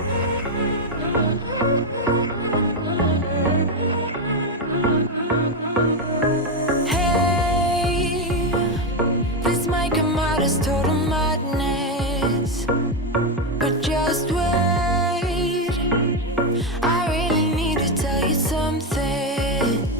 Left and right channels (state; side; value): normal; both; correlation 0.08